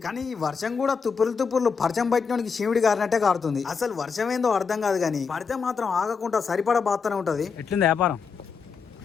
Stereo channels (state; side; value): quieter; right; 5.6 dB